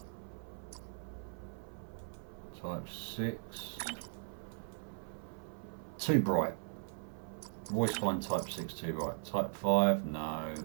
Type 6. Too bright. Always find type 6 too bright. Type 5, no.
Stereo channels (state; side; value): silent; left; 52 dB below the other